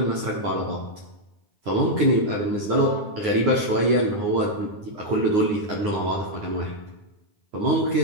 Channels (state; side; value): late; left; 9.7 ms